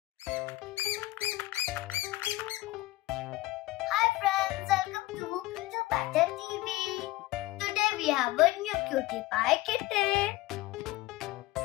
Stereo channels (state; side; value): quieter; right; 18.1 dB